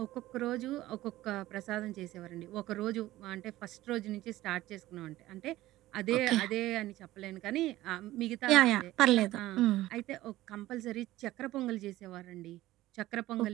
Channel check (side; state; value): left; quieter; 16.1 dB